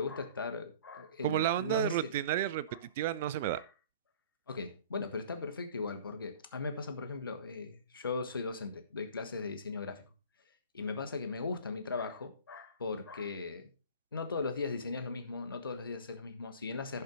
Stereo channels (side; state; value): both; inverted; correlation -0.44